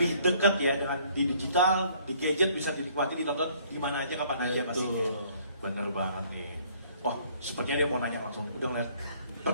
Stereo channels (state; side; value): inverted; both; correlation -0.61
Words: dekat ya dengan di digital, di gadget bisa dinikmati, ditonton di mana aja, kapan aja Mas. Bener banget nih. Wah, sepertinya dia mau nanya langsung. Udah ngeliat